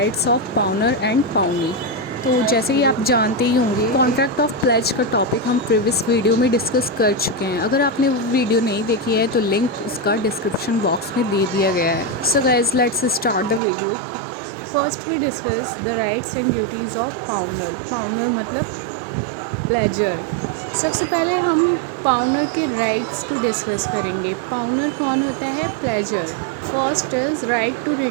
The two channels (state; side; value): drops out; left; at 13.6 s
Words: of pawner and pawnee. तो जैसे कि आप जानते ही होंगे contract of pledge का topic हम previous video में discuss कर चुके हैं। अगर आपने वो वीडियो नहीं देखी है तो लिंक उसका डिस्क्रिप्शन बॉक्स में दे दिया गया है। So guys let's start the video. First we discuss the rights and duties of pawnor. Pawnor मतलब प्लेजर। सबसे पहले हम पाउनर के राइट्स को डिस्कस करेंगे। पाउनर कौन होता है? Pledgor. First is right to